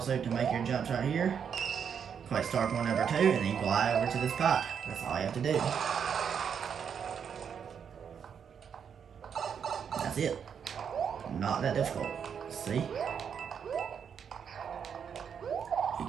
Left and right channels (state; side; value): quieter; left; 7.4 dB